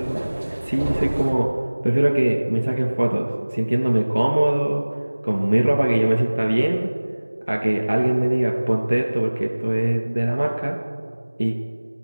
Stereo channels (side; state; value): both; inverted; correlation -1.00